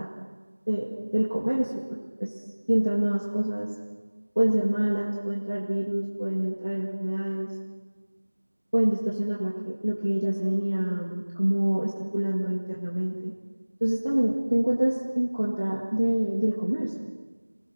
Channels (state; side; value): inverted; both; correlation -1.00